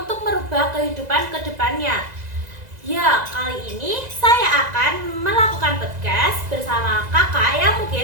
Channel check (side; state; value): left; late; 2.0 ms